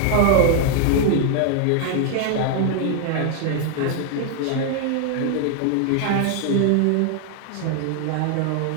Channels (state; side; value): different; both; correlation 0.00